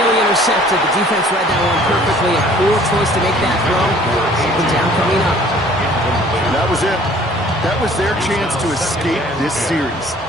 intercepted. The defense read that one perfectly. A poor choice to make that throw. Second down coming up. That was it. That was their chance to escape this series.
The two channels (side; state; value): both; normal; correlation 0.54